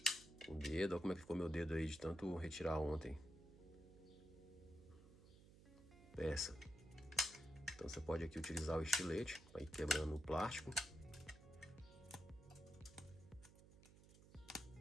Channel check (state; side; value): noise; right; hum, 20 dB below the sound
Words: com o dedo. Olha como é que ficou meu dedo aí de tanto retirar ontem. Peça. Então você pode aqui utilizar o estilete para ir quebrando o plástico.